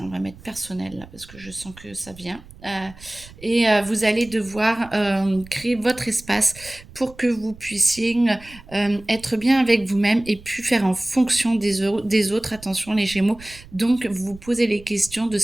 on va mettre personnel là parce que je sens que ça vient. Et vous allez devoir créer votre espace pour que vous puissiez être bien avec vous-même et puis faire en fonction des autres. Attention les Gémeaux. Donc vous posez les questions de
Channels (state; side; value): noise; right; rumble, 20 dB below the sound